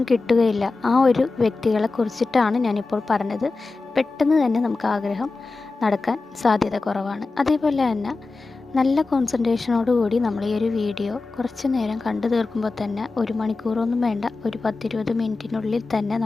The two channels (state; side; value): quieter; right; 3.7 dB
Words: കിട്ടുകയില്ല. ആ ഒരു വ്യക്തികളെ കുറിച്ചിട്ടാണ് ഞാനിപ്പോൾ പറഞ്ഞത്. പെട്ടെന്ന് തന്നെ നമുക്ക് ആഗ്രഹം നടക്കാൻ സാധ്യത കുറവാണ്. അതേപോലെ തന്നെ നല്ല കോൺസെൻട്രേഷനോടുകൂടി നമ്മൾ ഈ ഒരു വീഡിയോ കുറച്ച് നേരം കണ്ടു തീർക്കുമ്പോൾ തന്നെ 1 മണിക്കൂറൊന്നും വേണ്ട, ഒരു 10-20 മിനിറ്റിനുള്ളിൽ തന്നെ